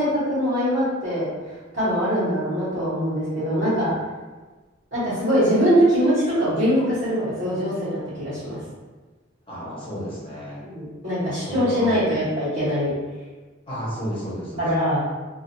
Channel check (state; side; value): normal; both; correlation 0.43